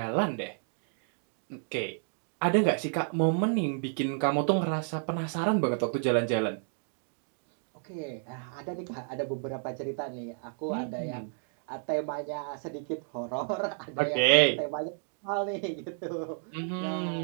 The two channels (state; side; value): silent; left; 57 dB below the other